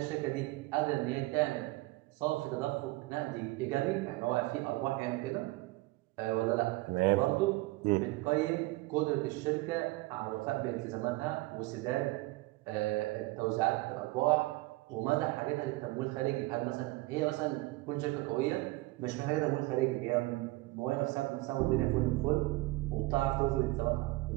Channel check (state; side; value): quieter; left; 20.9 dB